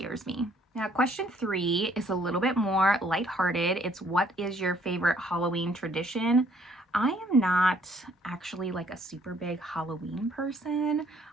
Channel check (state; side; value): normal; both; correlation 0.63